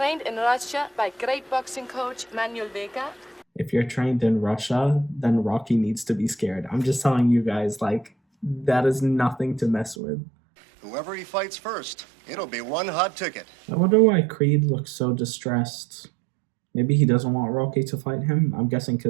in Russia by great boxing coach Manuel Vega. If you're trained in Russia, then Rocky needs to be scared. I'm just telling you guys, like, that is nothing to mess with. Whoever he fights first, it'll be one hot ticket. I wonder why Creed looks so distressed. Maybe he doesn't want Rocky to fight him? I'm guessing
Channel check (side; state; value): left; drops out; at 10.0 s